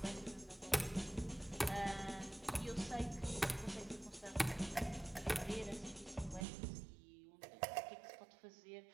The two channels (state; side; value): drops out; left; at 6.5 s